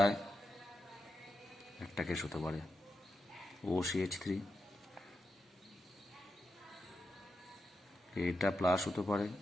একটা কেস হতে পারে OCH3, এইটা প্লাস হতে পারে,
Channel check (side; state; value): both; normal; correlation 0.87